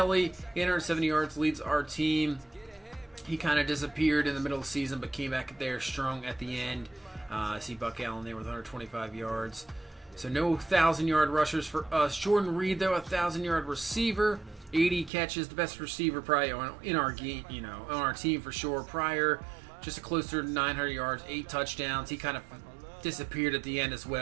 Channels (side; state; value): left; drops out; at 15.1 s